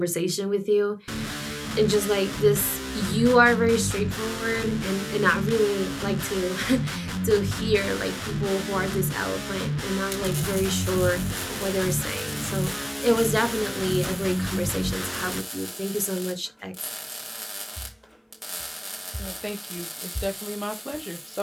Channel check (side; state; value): both; identical; correlation 1.00